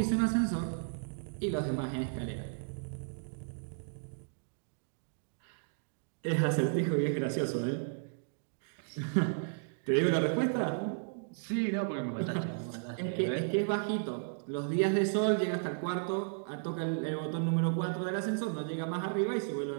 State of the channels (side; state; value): left; silent; digital silence